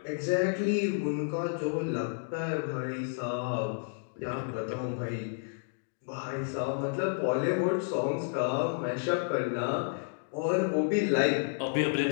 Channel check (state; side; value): silent; right; digital silence